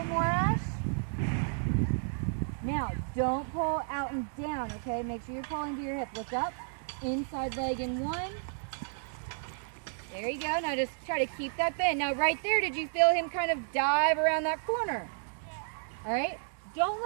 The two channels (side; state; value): left; silent; digital silence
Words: bit more, Ash. Now, don't pull out and down, okay? Make sure you're pulling to your hip. Look up, inside leg in 1. There you go. Now just try to keep that bend. Now right there, did you feel him kind of dive around that corner? Yeah. All right? Don't